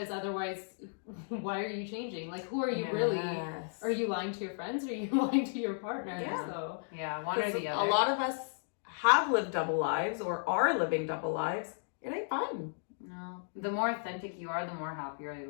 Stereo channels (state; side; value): silent; right; digital silence